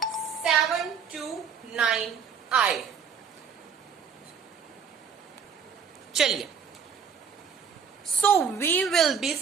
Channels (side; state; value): left; quieter; 6.8 dB